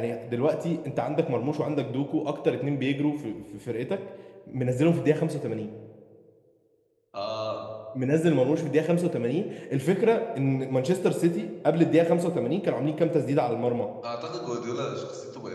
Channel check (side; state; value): both; identical; correlation 1.00